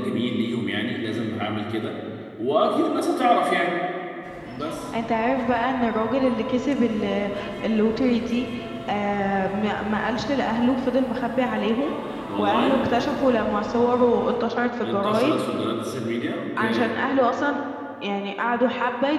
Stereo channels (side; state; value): both; identical; correlation 1.00